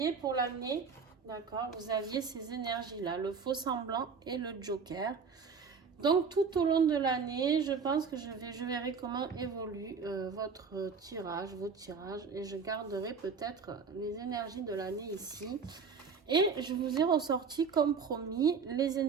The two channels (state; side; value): quieter; left; 5.6 dB